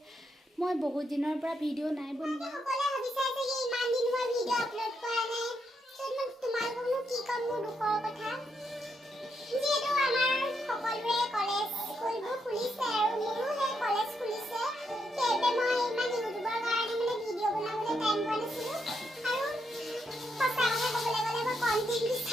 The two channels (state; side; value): normal; both; correlation 0.80